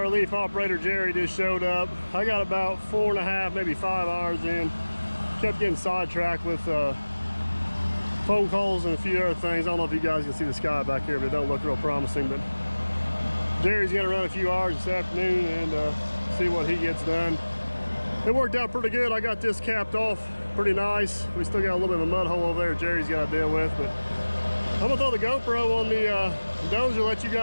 operator Jerry just showed up. I got about 4.5, maybe 5 hours in. Kept getting sidetracked with phone calls and a few other things. I don't know if you guys can see the sky back here, but it don't look real promising. But Jerry's gonna run a few hours this afternoon and see what he gets done. It worked out pretty good. I got this capped off pretty nice. We still got a little bit of a mud hole over there Jerry's got to deal with, but I'm gonna throw the GoPro on the dozer, let you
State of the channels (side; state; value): both; inverted; correlation -1.00